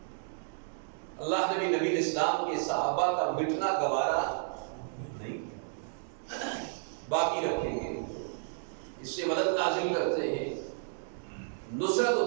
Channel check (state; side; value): silent; left; digital silence